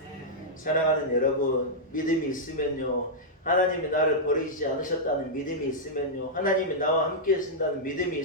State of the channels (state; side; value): normal; both; correlation -0.08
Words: 사랑하는 여러분, 믿음이 있으면요, 하나님이 나를 버리지 않으셨다는 믿음이 있으면요, 하나님이 나와 함께 하신다는 믿음이